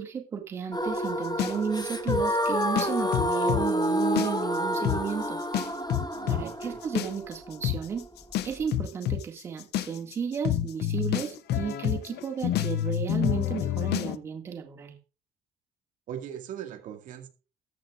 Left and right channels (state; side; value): normal; both; correlation 0.47